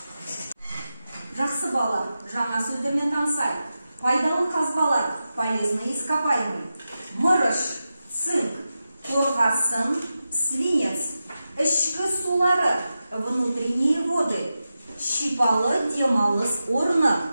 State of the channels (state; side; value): inverted; both; correlation -0.92